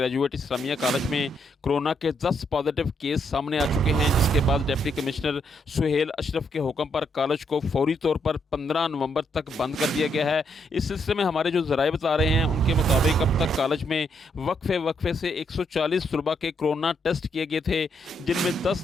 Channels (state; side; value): normal; both; correlation 0.76